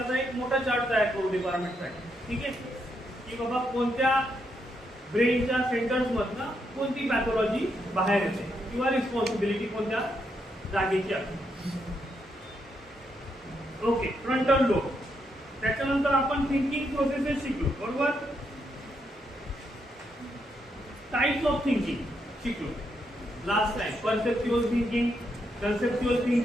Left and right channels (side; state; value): both; normal; correlation 0.79